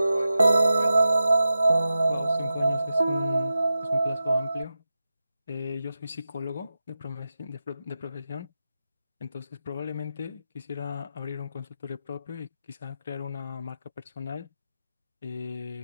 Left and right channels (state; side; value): inverted; both; correlation -0.91